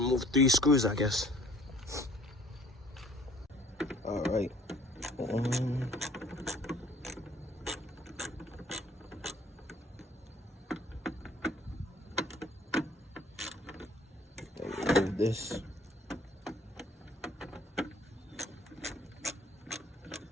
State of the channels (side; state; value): both; normal; correlation 0.57